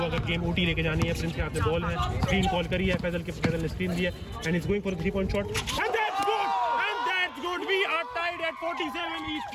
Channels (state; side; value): identical; both; correlation 1.00